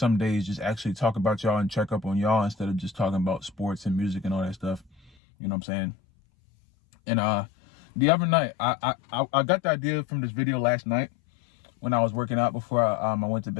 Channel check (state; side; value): drops out; right; at 5.1 s